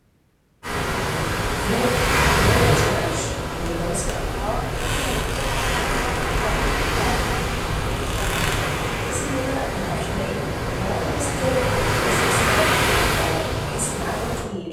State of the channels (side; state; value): both; identical; correlation 1.00